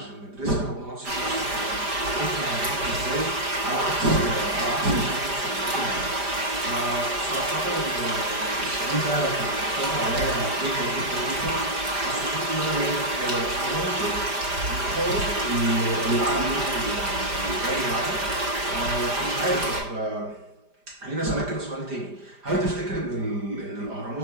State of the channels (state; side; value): late; left; 5.0 ms